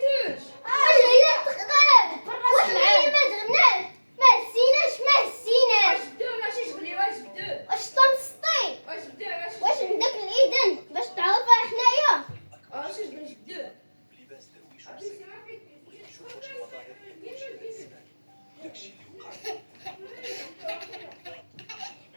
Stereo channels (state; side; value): inverted; both; correlation -1.00